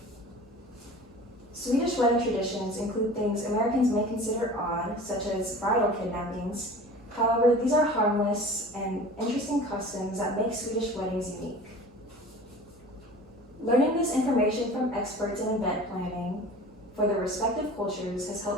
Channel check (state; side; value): normal; both; correlation 0.41